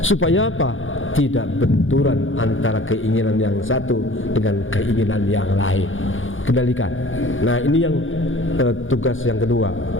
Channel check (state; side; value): late; right; 0.58 ms